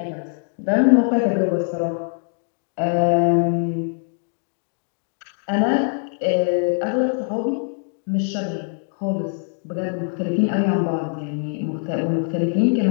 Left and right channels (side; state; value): right; silent; 64 dB below the other